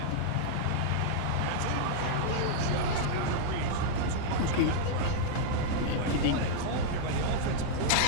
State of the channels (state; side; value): different; both; correlation -0.01